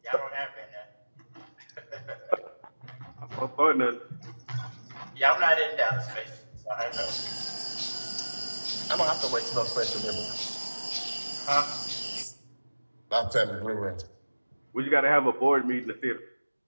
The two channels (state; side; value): inverted; both; correlation -1.00